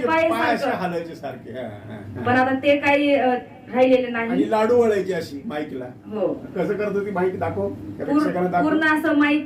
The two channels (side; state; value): both; identical; correlation 1.00